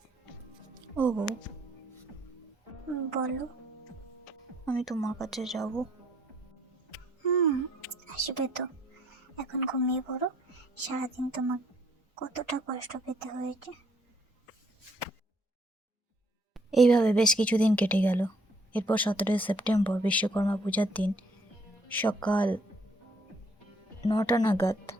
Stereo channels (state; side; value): normal; both; correlation 0.66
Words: ও বউ, বলো। আমি তোমার কাছে যাব। আসবে তো, এখন ঘুমিয়ে পড়ো। সারাদিন তোমার কতটা কষ্ট পেতে হয়েছে। এইভাবে বেশ কিছুদিন কেটে গেল। এরপর 17 সেপ্টেম্বর বিশ্বকর্মা পূজার দিন সকাল 9টা নাগাদ